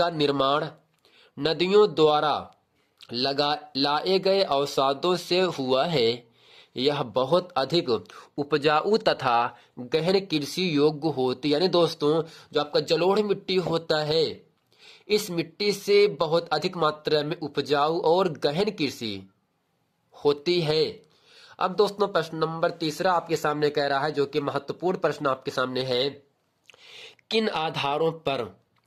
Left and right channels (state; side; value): identical; both; correlation 1.00